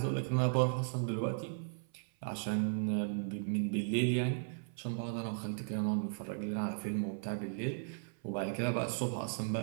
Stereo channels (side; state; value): left; silent; 54 dB below the other